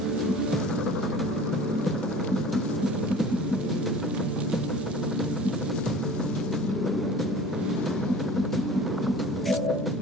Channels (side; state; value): both; normal; correlation 0.42